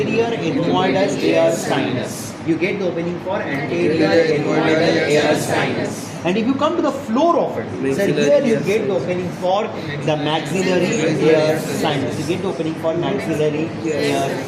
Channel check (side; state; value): both; identical; correlation 1.00